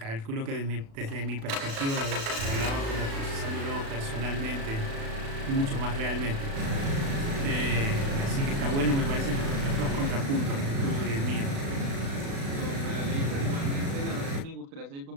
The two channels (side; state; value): left; late; 36 ms